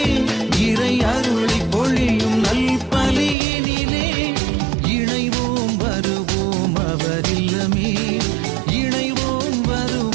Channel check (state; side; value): drops out; left; at 3.4 s